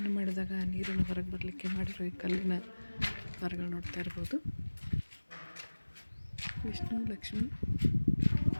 ಮಾಡಿದಾಗ ನೀರನ್ನು ಹೊರಗೆ ಬರಲಿಕ್ಕೆ ಮಾಡಿರೋ ಈ ಕಲ್ಲಿನ ಮರಗಳು ನೋಡ್ತಾ ಇರ್ಬೋದು. ವಿಷ್ಣು, ಲಕ್ಷ್ಮಿ,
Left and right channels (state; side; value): inverted; both; correlation -1.00